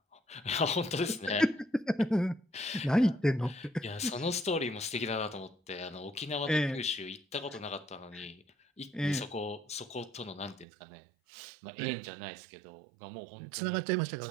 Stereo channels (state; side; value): drops out; left; at 10.7 s